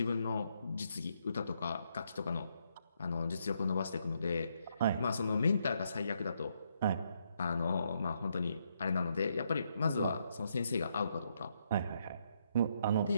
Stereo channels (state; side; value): inverted; both; correlation -0.76